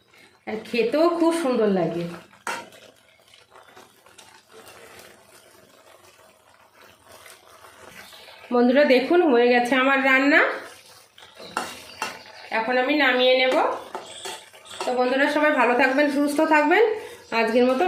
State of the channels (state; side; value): identical; both; correlation 1.00